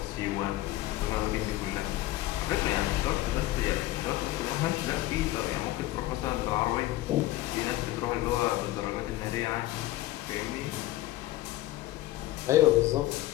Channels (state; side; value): quieter; right; 16.3 dB